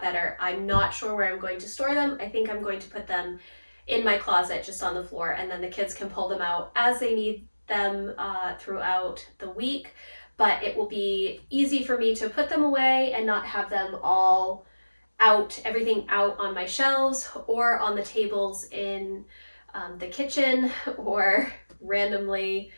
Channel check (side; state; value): both; inverted; correlation -1.00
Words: better. I'm not sure where I'm going to store them. I think I'm going to put them in my closet just on the floor, and then the kids can pull them out as they need them throughout the week. But it will be easy for me to put them away and not have them all out, everything out on my shelves or on the tables in the kitchen or randomly